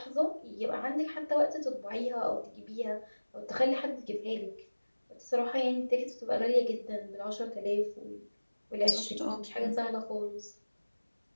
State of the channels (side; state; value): both; inverted; correlation -1.00